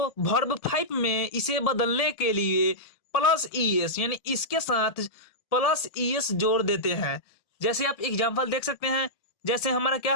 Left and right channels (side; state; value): right; late; 1.7 ms